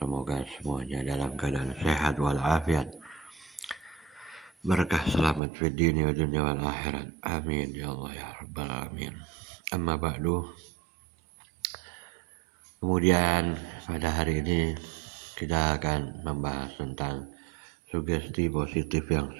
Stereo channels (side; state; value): left; drops out; at 5.4 s